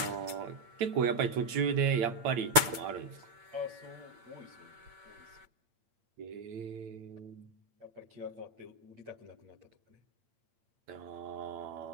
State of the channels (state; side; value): late; left; 8.7 ms